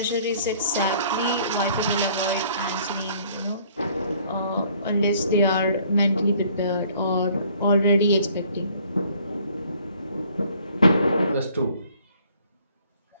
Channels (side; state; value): both; inverted; correlation -0.59